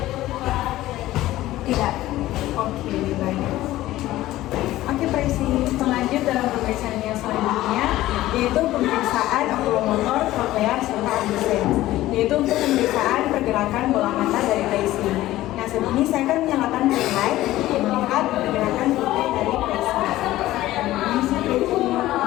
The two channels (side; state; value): right; quieter; 15.7 dB